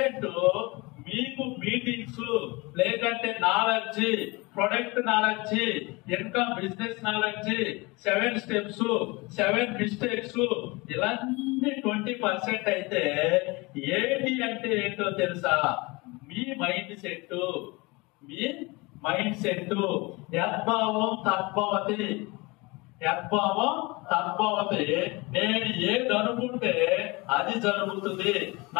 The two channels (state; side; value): quieter; right; 25.2 dB